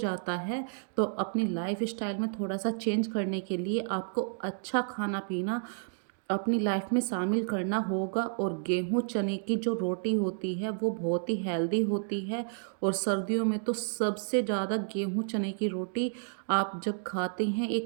है। तो अपनी लाइफ स्टाइल में थोड़ा सा चेंज करने के लिए आपको अच्छा खाना पीना अपनी लाइफ में शामिल करना होगा। और गेहूँ चने की जो रोटी होती है वो बहुत ही हेल्दी होती है। और सर्दियों में तो सबसे ज़्यादा गेहूँ चने की रोटी आप जब खाते हैं,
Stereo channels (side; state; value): left; silent; digital silence